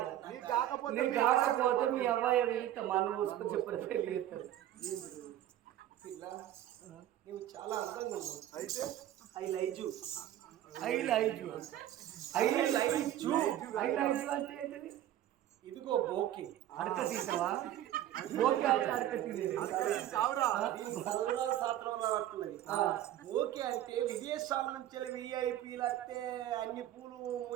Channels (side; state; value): left; quieter; 12.5 dB